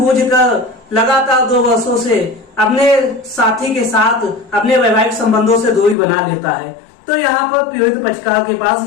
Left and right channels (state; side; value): drops out; right; at 6.0 s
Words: लगातार 2 वर्षों से अपने साथी के साथ अपने वैवाहिक संबंधों से दूरी बना लेता है, तो यहाँ पर पीड़ित पक्षकार के पास